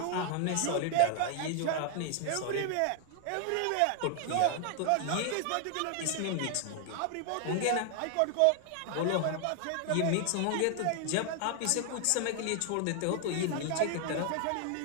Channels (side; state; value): both; different; correlation 0.00